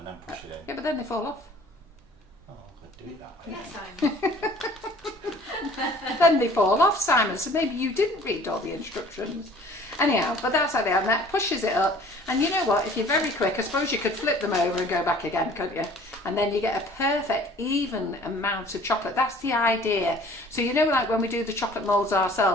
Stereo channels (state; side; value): normal; both; correlation 0.51